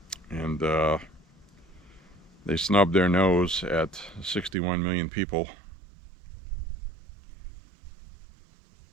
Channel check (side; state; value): left; drops out; at 4.5 s